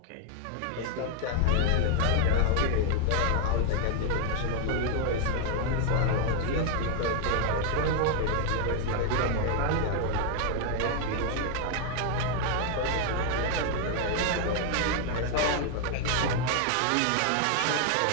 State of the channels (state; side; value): different; both; correlation 0.00